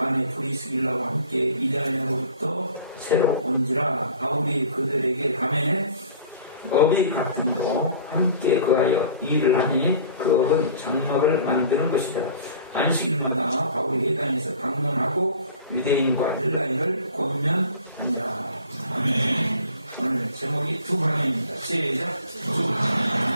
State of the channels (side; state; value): both; inverted; correlation -0.46